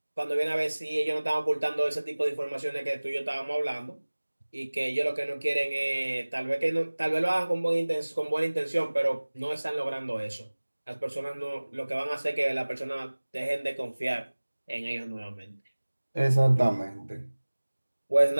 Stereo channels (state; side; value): inverted; both; correlation -1.00